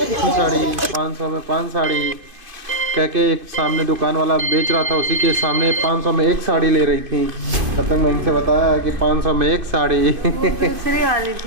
साड़ी, 500 में 5 साड़ी कह के एक सामने दुकान वाला बेच रहा था, उसी के सामने 500 में एक साड़ी ले रही थी। तब तक मैं इनसे बताया कि 500 में एक साड़ी दूसरी वाली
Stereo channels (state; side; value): late; left; 2.5 ms